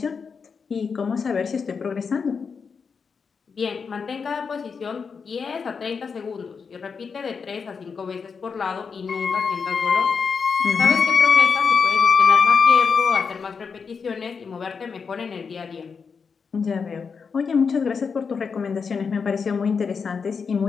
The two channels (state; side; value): quieter; right; 5.7 dB